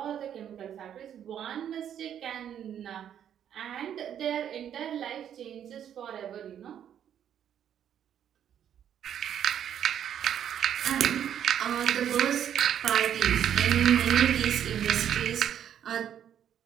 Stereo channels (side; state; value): left; quieter; 9.6 dB